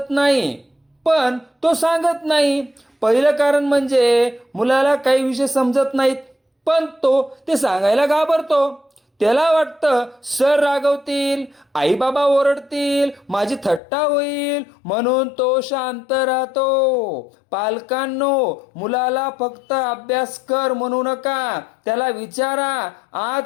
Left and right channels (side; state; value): right; drops out; at 13.8 s